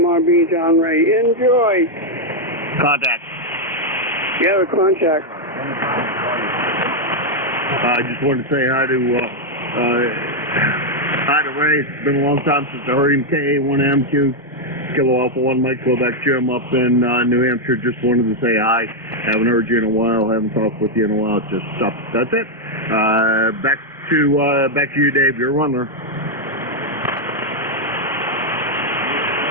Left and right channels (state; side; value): normal; both; correlation 0.00